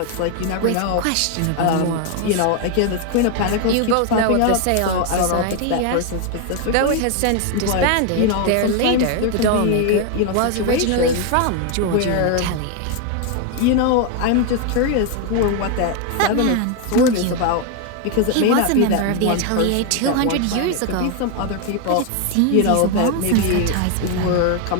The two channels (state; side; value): different; both; correlation 0.01